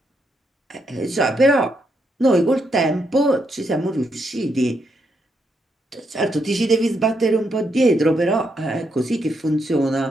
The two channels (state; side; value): normal; both; correlation 0.79